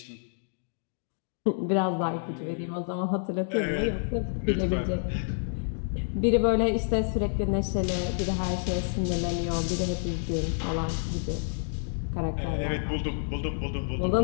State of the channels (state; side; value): silent; right; digital silence